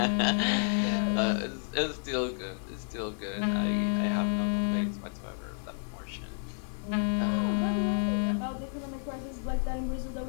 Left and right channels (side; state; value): right; silent; digital silence